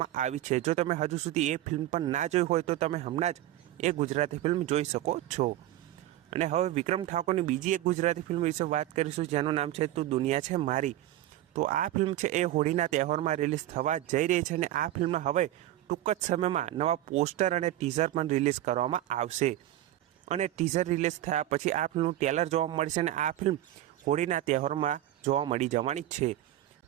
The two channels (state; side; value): quieter; left; 14.0 dB